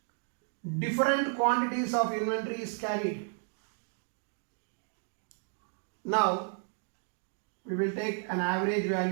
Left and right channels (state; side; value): silent; left; 56 dB below the other